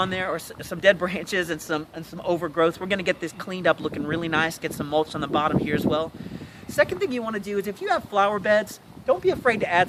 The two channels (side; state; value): both; identical; correlation 1.00